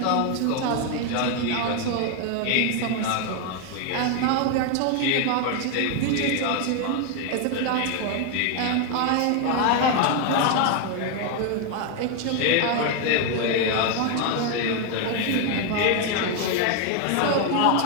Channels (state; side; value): different; both; correlation 0.01